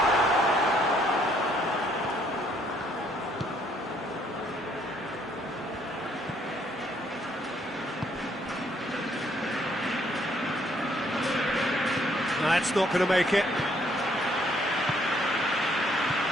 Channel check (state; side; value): normal; both; correlation 0.67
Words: That's not going to make it.